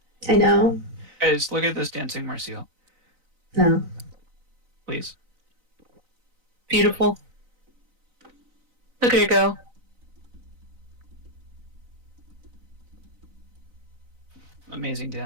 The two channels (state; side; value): late; left; 3.9 ms